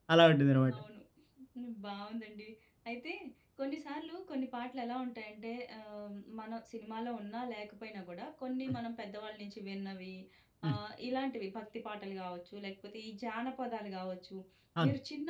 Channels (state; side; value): identical; both; correlation 1.00